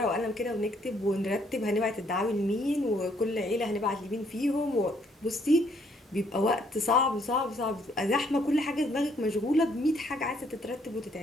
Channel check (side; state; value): both; normal; correlation 0.68